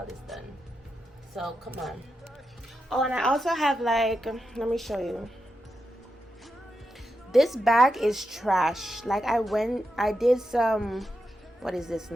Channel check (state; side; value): normal; both; correlation 0.87